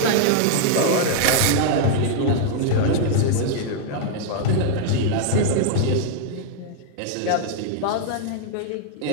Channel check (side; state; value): both; different; correlation -0.01